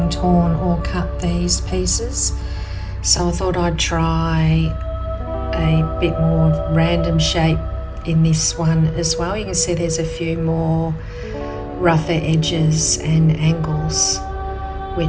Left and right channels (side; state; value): both; identical; correlation 1.00